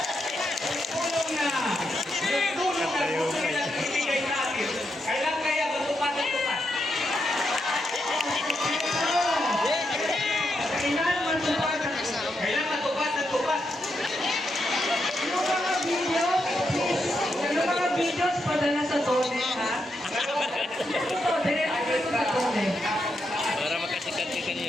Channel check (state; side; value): normal; both; correlation 0.83